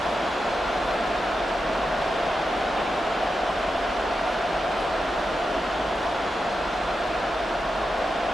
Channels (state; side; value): normal; both; correlation 0.88